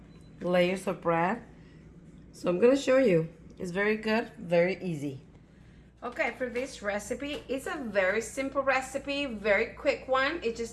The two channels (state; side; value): identical; both; correlation 1.00